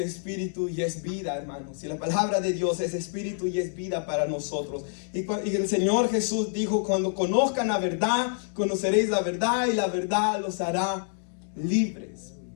y es vida, hermanos. Y la palabra de Dios es espíritu y es vida para nosotros. Y el Señor Jesús dijo, cuando conozcan la verdad, conoceréis la verdad y la verdad los hará libres.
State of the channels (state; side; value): silent; right; digital silence